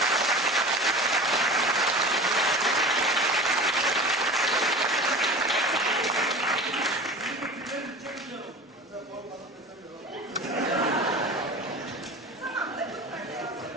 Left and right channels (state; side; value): normal; both; correlation 0.36